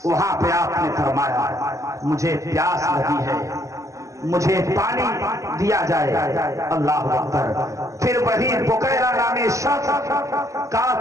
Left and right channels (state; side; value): late; left; 0.16 ms